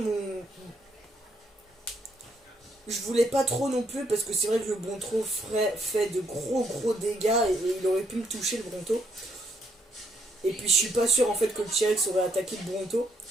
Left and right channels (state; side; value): normal; both; correlation 0.72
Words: je voulais pas trop non plus, parce que c'est vrai que le Bronto fait de gros dégâts et il aurait pu me toucher le Bronto. Et puis je suis pas sûr en fait que le T-Rex aurait attaqué le Bronto.